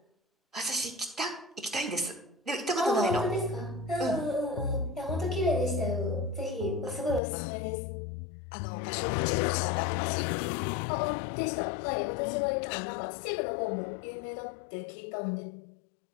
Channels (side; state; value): right; drops out; at 7.2 s